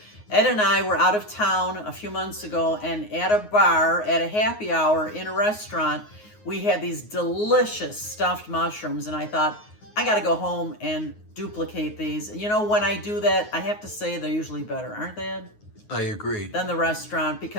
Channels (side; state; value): right; late; 9.5 ms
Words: Ed and I were out of town a few months ago, and at a bar, at a happy hour in a restaurant, we had these delicious stuffed mushrooms, and I thought, I gotta go home and duplicate these. You know, when I do that, I have to say they're usually better, aren't they, Ed? I agree. Than the restaurant,